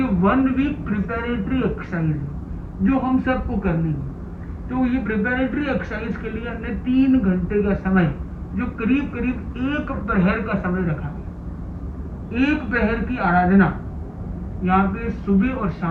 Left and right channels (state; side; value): identical; both; correlation 1.00